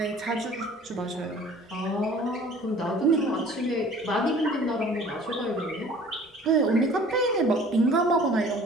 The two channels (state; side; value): normal; both; correlation 0.49